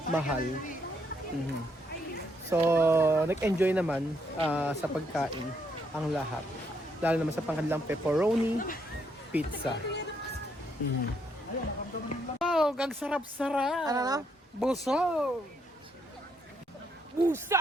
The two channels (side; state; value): both; normal; correlation 0.74